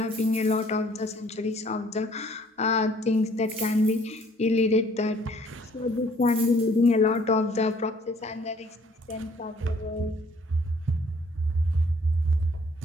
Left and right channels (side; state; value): both; normal; correlation 0.59